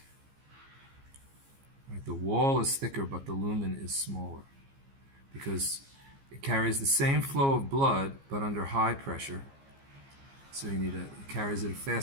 Right? The wall is thicker, but the lumen is smaller because it carries the same flow of blood, but under high pressure. So it carries at a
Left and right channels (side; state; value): left; late; 15 ms